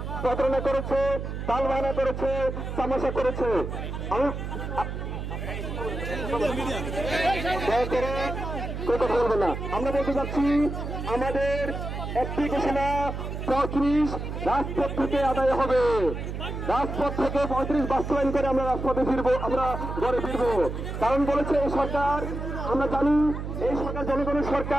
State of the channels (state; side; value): noise; right; hum, 5 dB below the sound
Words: প্রতারণা করেছে, তালবাহানা করেছে, তামাশা করেছে। কথা বলবো না। আমরা বলতে চাচ্ছি আমাদের একটি ঘোষণা 35 রাজপথ থেকে আদায় হবে। রাজপথ থেকে 35 বাস্তবায়ন করে আমরা রাজপথে ফিরবো, আমরা ঘরে ফিরবো। কারণ বলেছে এই সরকার, আমরা জানি এই সরকার জনগণের